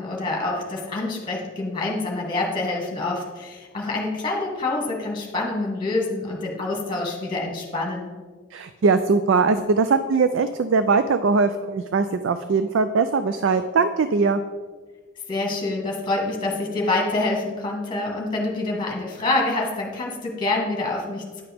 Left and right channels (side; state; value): both; normal; correlation 0.11